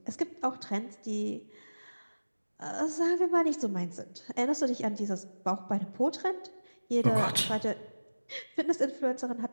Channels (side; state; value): both; inverted; correlation -1.00